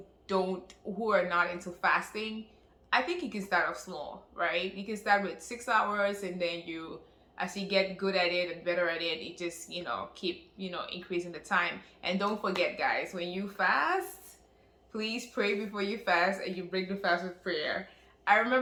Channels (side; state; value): both; identical; correlation 1.00